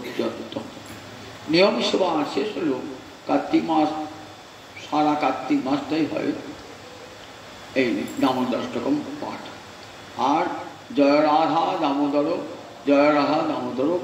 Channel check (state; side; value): identical; both; correlation 1.00